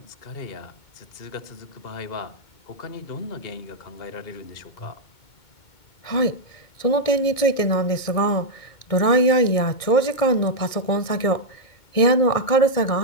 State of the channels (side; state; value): right; late; 2.2 ms